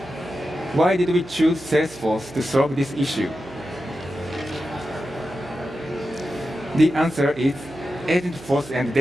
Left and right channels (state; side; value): noise; right; hum, 19 dB below the sound